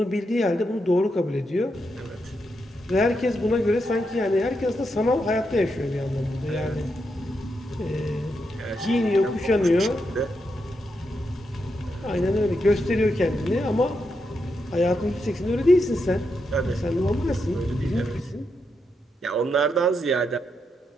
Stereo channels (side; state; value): both; normal; correlation 0.83